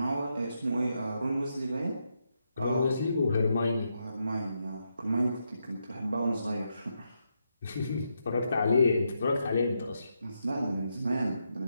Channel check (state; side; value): inverted; both; correlation -0.82